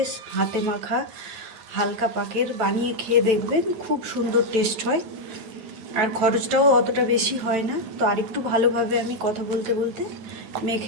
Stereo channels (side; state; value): left; late; 8.8 ms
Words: হাতে মাখা হালকা পাকের বানিয়ে খেয়ে দেখবেন, খুব সুন্দর টেস্ট হয়। আর খরচটাও অতটা বেশি হয় না। তো আরেকটু ভালোভাবে আমি কথা বলতে বলতে